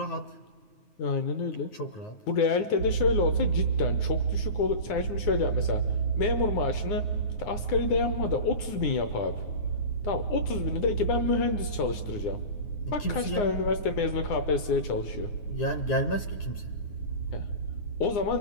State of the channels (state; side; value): late; right; 9.8 ms